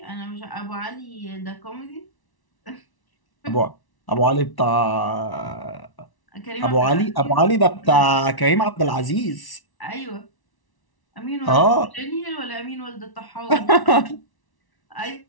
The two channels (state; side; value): late; right; 1.1 ms